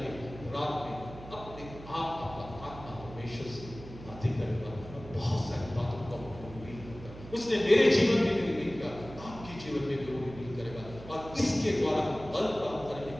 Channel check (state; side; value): noise; right; hum, 15 dB below the sound